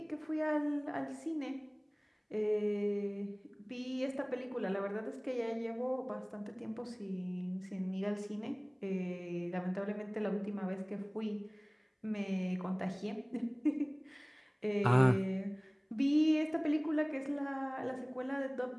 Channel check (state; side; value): identical; both; correlation 1.00